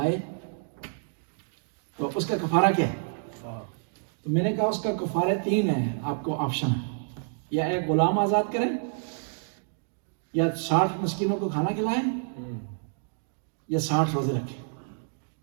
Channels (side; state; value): left; silent; digital silence